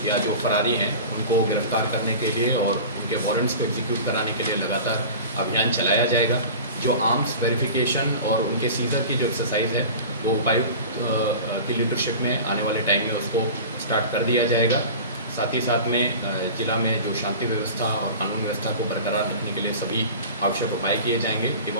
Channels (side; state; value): both; inverted; correlation -0.35